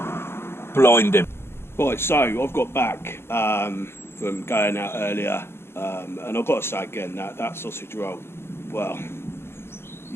Blinding. Right, so I've got back from going out earlier, and I've got to say again, that sausage roll, well,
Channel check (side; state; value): right; late; 0.12 ms